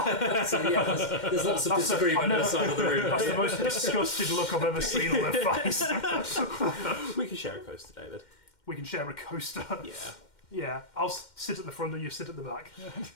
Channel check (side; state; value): right; late; 2.1 ms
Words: yeah, there's lots of disagreement on the side of the room. That's the most disgusted look I've ever seen on their face. We can share a coaster, David. We can share a coaster. Yeah. Yeah, I'll sit at the front and you sit at the back.